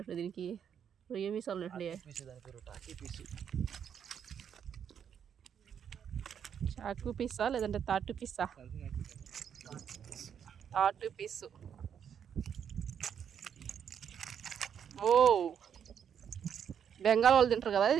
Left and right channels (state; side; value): quieter; left; 8.2 dB